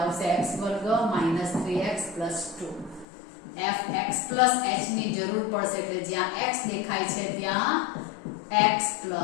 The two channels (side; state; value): right; drops out; at 3.1 s